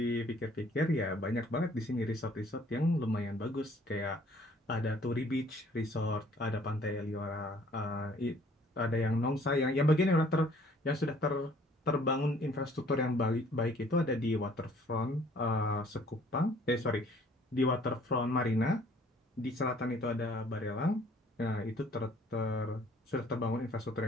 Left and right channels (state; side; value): normal; both; correlation 0.58